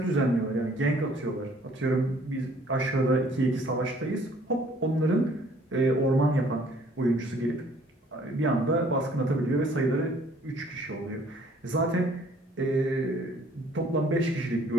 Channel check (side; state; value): both; normal; correlation 0.58